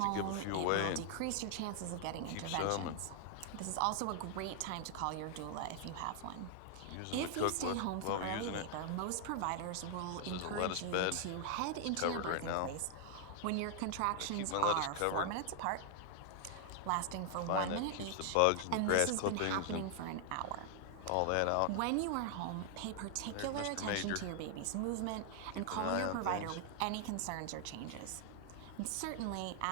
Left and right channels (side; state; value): both; different; correlation 0.00